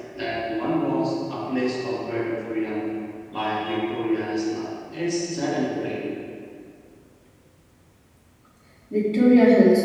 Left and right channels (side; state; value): both; identical; correlation 1.00